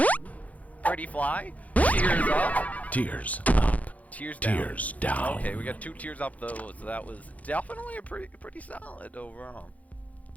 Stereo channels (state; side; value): late; right; 0.071 ms